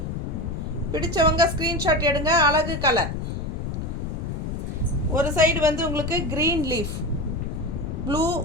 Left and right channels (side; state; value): left; noise; rumble, 4 dB below the sound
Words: பிடிச்சவங்க ஸ்க்ரீன்ஷாட் எடுங்க. அழகு கலர். ஒரு சைடு வந்து உங்களுக்கு green leaf, blue